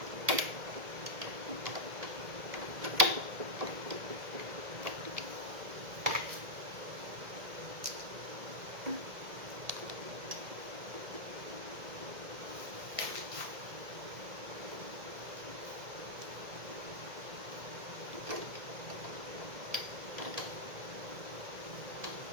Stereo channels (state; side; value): late; left; 1.7 ms